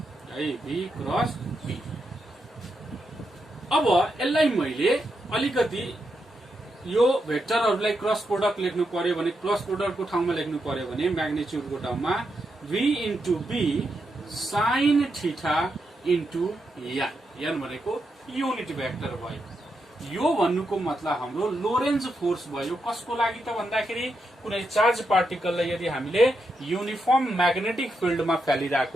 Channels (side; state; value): both; normal; correlation 0.84